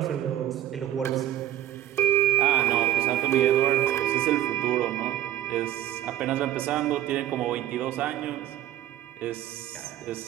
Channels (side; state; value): left; quieter; 12.4 dB